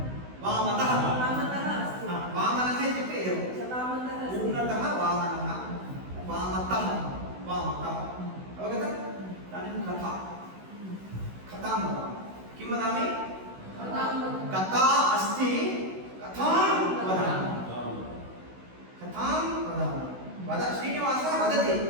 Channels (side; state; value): left; late; 16 ms